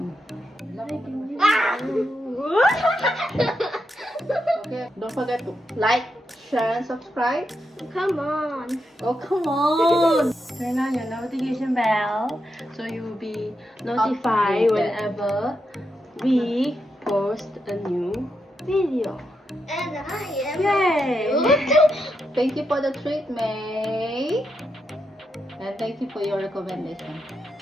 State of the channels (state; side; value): normal; both; correlation 0.84